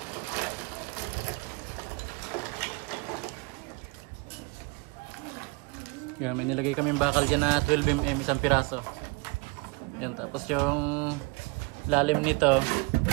Yan, may nilagay kaming bakal dyan na 12mm isang piraso. Yan, tapos yung lalim nito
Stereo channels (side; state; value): left; quieter; 29.0 dB